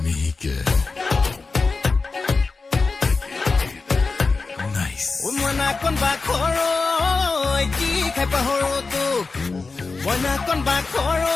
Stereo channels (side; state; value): right; quieter; 4.1 dB